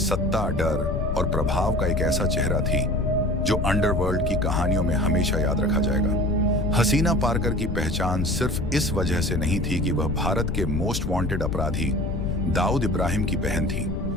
डर और प्रभाव का एक ऐसा चेहरा थी जो अंडरवर्ल्ड की कहानियों में हमेशा याद रखा जाएगा। हसीना पारकर की पहचान सिर्फ इस वजह से नहीं थी कि वह भारत के मोस्ट वांटेड अपराधी दाऊद इब्राहिम की बहन थी,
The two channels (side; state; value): left; noise; rumble, 4 dB below the sound